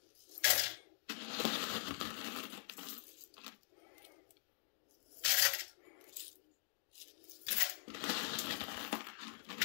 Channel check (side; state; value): right; silent; digital silence